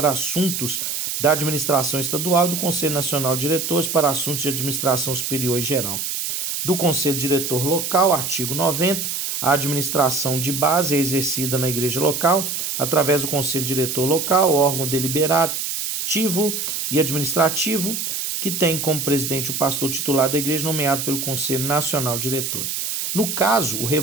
assuntos da administração estadual e do Conselho Nacional de Diretores para assuntos de administração superior e geral. Do Conselho Diretor Local, artigo 90, a administração de base é exercida na igreja local através do Conselho Diretor Local, órgão deliberativo e administrativo, que tem como presidente o pastor titular da igreja nomeado pelo Conselho Nacional de Diretores. No caso, o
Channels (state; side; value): noise; right; hiss, 3 dB below the sound